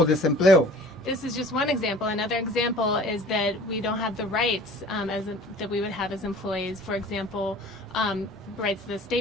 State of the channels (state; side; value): normal; both; correlation 0.47